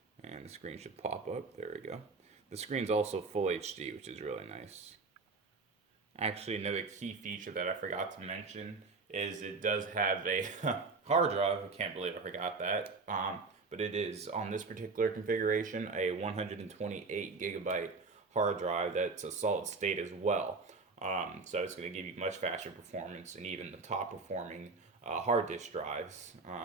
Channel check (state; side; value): quieter; left; 4.1 dB